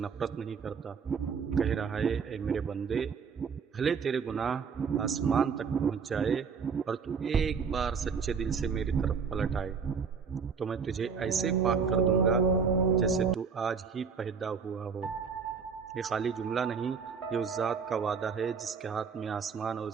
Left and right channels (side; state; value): left; quieter; 5.9 dB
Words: نہیں کرتا، کہہ رہا ہے اے میرے بندے، بھلے تیرے گناہ آسمان تک پہنچ جائے اور تو ایک بار سچے دل سے میری طرف پلٹ آئے تو میں تجھے ایسے پاک کر دوں گا جیسے تو آج ہی پیدا ہوا ہو۔ یہ خالی جملہ نہیں، یہ اس ذات کا وعدہ ہے جس کے ہاتھ میں آسمان اور